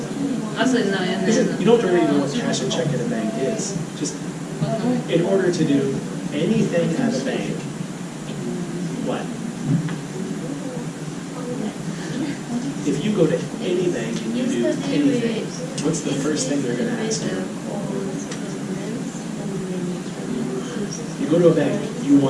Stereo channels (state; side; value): identical; both; correlation 1.00